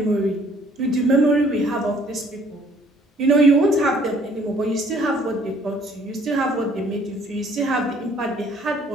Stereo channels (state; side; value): normal; both; correlation 0.60